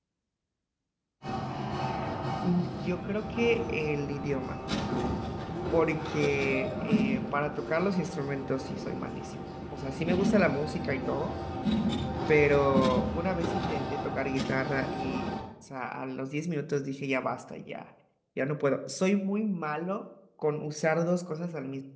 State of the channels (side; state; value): both; identical; correlation 1.00